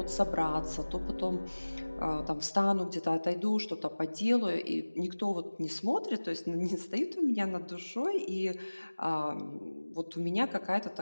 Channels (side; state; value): both; inverted; correlation -1.00